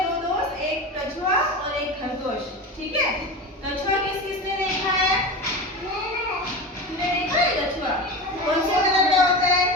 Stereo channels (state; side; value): normal; both; correlation 0.27